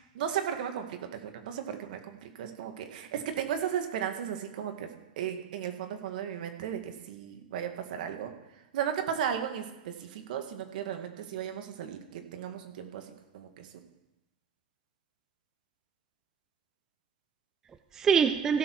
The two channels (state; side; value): quieter; left; 7.7 dB